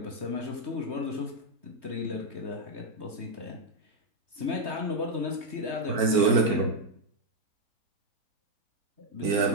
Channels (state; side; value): late; left; 4.4 ms